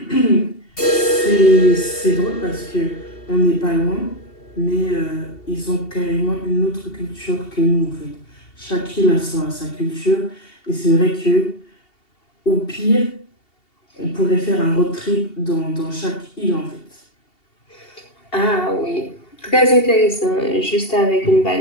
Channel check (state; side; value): late; right; 2.7 ms